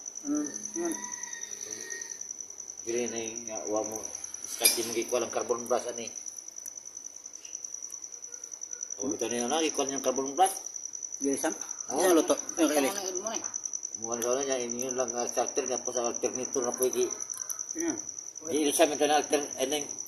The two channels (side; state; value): both; identical; correlation 1.00